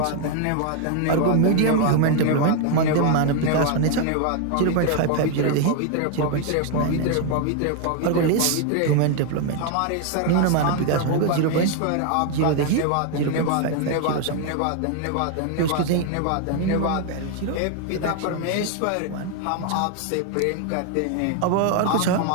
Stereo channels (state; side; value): different; both; correlation 0.01